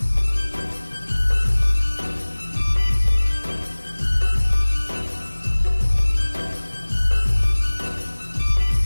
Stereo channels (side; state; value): both; inverted; correlation -1.00